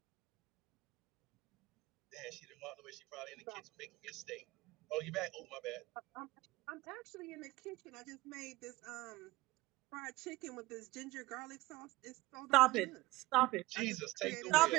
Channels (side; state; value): left; quieter; 19.0 dB